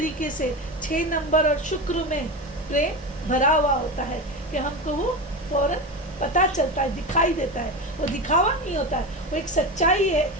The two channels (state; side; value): normal; both; correlation 0.22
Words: से 6 नंबर और शुक्र में प्रेम भरा हुआ होता है कि हमको वो फौरन पता चलता है, दिखाई देता है। वो दिखावा नहीं होता है, वो एक सच्चाई है,